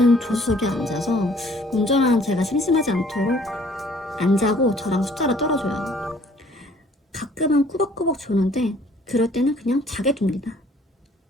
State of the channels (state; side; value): normal; both; correlation 0.58